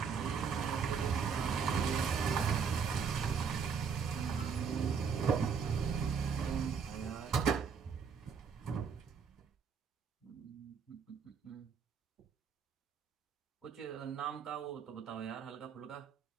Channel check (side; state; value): left; quieter; 6.2 dB